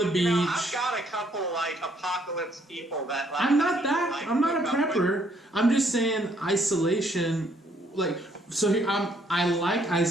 beach. I've got a couple like apocalypse people that like. I'm not that. Like, I'm not a prepper. I'm just saying isolation. Like so, I like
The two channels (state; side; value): normal; both; correlation 0.67